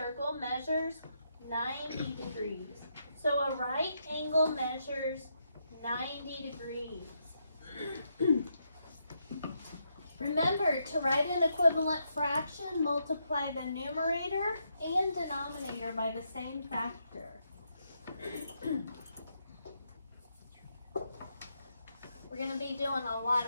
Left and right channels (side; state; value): both; inverted; correlation -0.80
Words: measures 90 degrees. So a right angle measures 90 degrees. Remember, to write an equivalent fraction, multiply the numerator and denominator by the same factor. We're going to be doing a lot